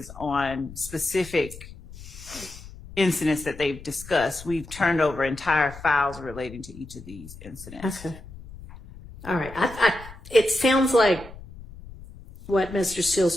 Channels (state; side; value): noise; left; rumble, 16 dB below the sound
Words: on specific incidents that they've discussed, we've turned over entire files relating to each of these incidents. Okay. All right. It sounds like what Mr. Steele's